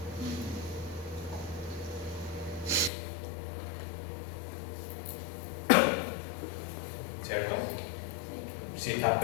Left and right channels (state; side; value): drops out; right; at 2.9 s